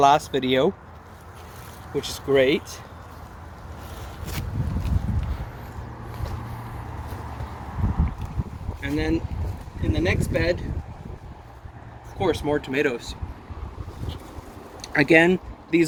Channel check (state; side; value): identical; both; correlation 1.00